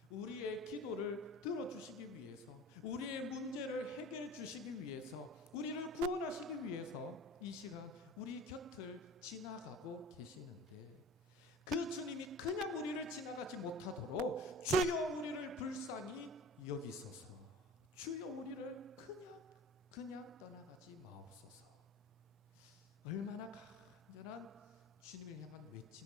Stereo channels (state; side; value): normal; both; correlation 0.40